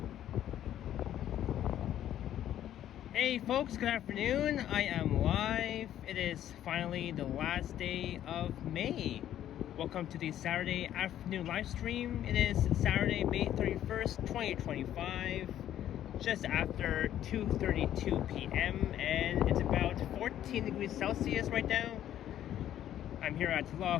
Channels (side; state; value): right; quieter; 11.5 dB